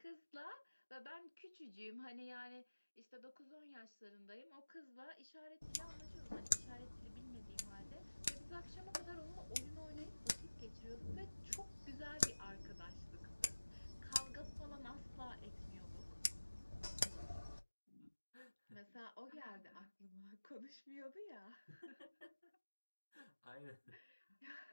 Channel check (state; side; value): inverted; both; correlation -1.00